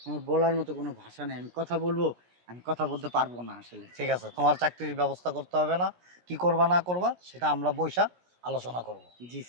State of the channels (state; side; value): late; left; 17 ms